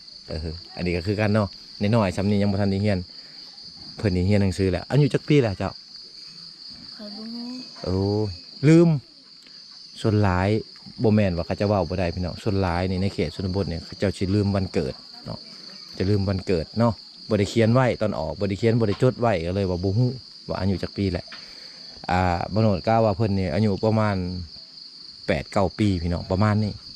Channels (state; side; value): identical; both; correlation 1.00